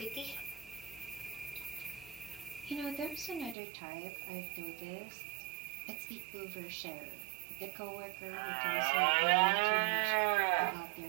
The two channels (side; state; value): left; drops out; at 3.6 s